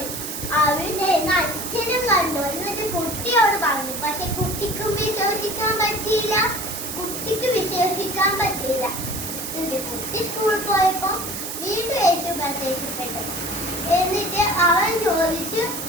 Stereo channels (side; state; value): right; noise; hiss, 6 dB below the sound